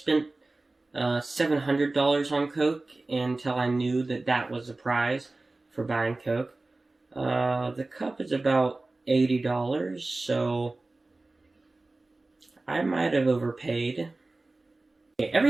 $700 on Coke until I knew that that was a prize for buying Coke. The cup is about $80, so I might have overpaid. Okay,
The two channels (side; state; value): left; quieter; 3.1 dB